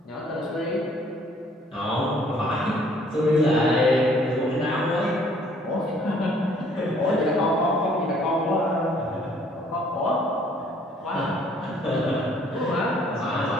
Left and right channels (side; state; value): both; normal; correlation 0.60